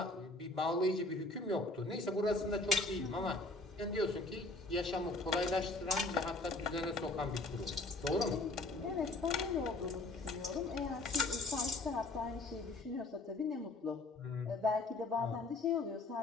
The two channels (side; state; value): right; quieter; 3.0 dB